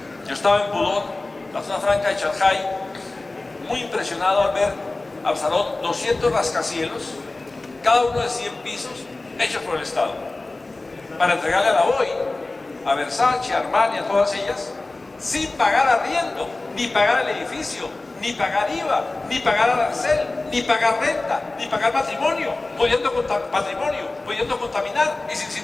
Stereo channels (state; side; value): quieter; right; 3.1 dB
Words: Yo estaba en Pudong, la zona franca de Shanghái, muy impresionado al ver Absalón 200 rascacielos, cada uno de 100 pisos, hechos por el Estado, para entregarle a la BOI, a Versace, a Armani, a todas ellas, sin pagar arriendo, ni pagar el edificio, ni pagar IVA, ni pagar arancel, ni pagar renta, ni pagar patrimonio, pudiendo contaminar y sin